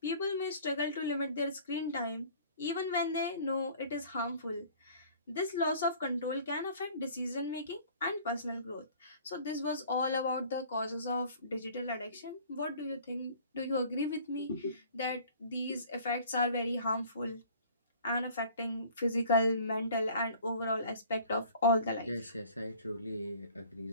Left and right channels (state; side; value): inverted; both; correlation -0.50